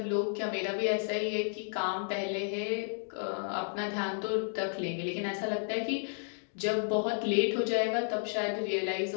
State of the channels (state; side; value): silent; right; digital silence